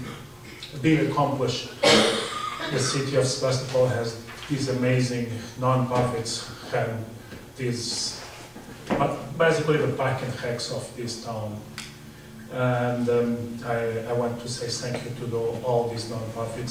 big accomplishment. The city of Sebastopol has these amazing non-profits and these, basically the park and recs of this town. And I want to say thank you to all these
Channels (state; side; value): identical; both; correlation 1.00